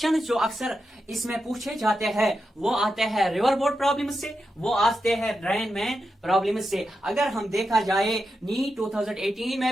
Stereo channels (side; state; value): both; normal; correlation 0.88